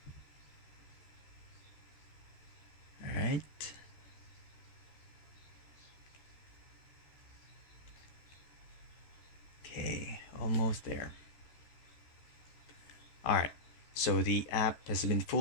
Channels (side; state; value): right; late; 13 ms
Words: Alright. Okay, almost there. Alright, so the app has been